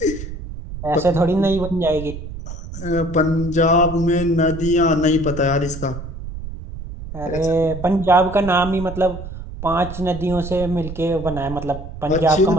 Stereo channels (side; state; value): right; noise; rumble, 10 dB below the sound